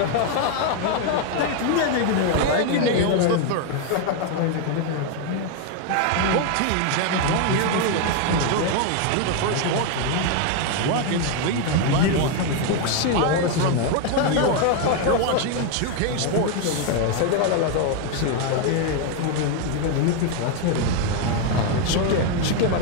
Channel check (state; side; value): different; both; correlation 0.01